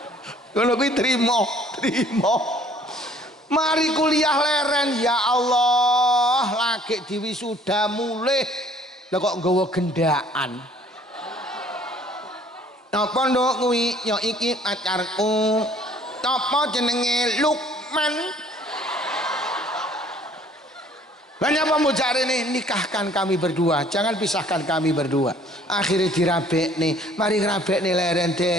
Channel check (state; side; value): normal; both; correlation 0.57